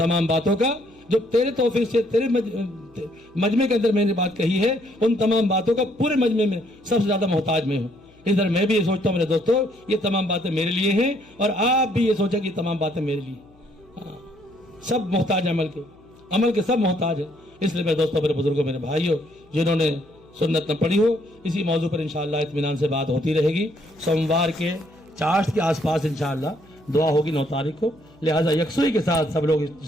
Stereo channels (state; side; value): noise; left; hum, 30 dB below the sound